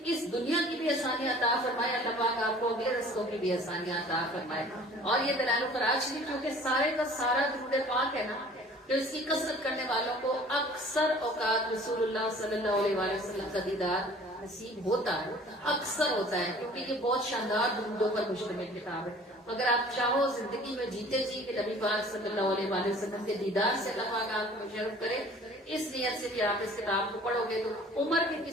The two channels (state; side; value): normal; both; correlation 0.49